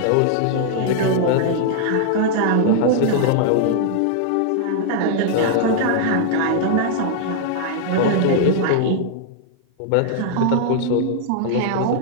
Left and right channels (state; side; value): different; both; correlation -0.01